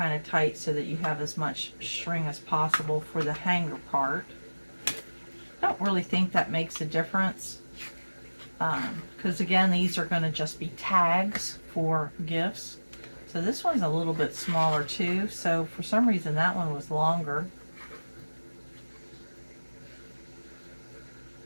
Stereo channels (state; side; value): inverted; both; correlation -1.00